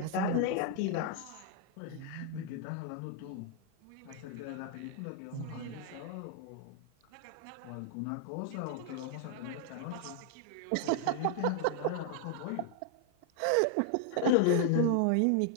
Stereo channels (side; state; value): both; different; correlation 0.00